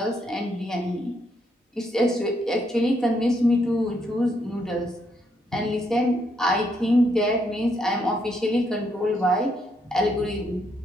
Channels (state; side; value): normal; both; correlation 0.75